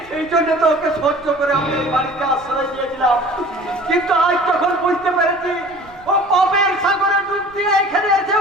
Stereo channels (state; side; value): noise; right; rumble, 26 dB below the sound